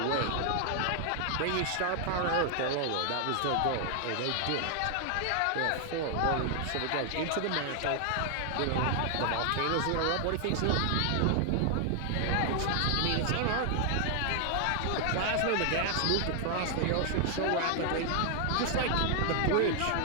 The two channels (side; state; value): both; different; correlation 0.00